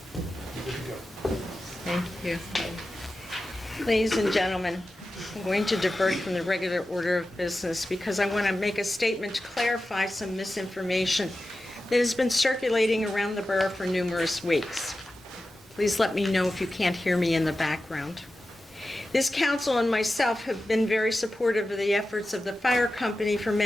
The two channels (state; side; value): normal; both; correlation 0.93